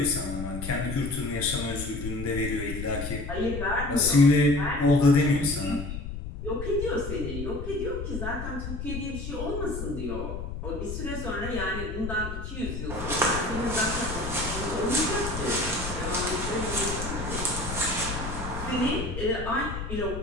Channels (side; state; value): left; noise; rumble, 6 dB below the sound